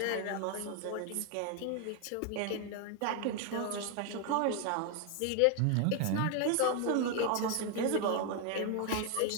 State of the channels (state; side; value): different; both; correlation 0.01